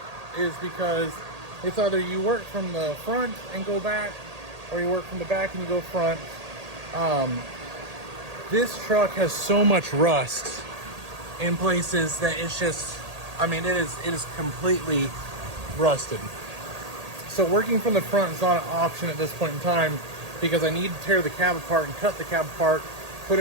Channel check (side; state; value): left; late; 1.8 ms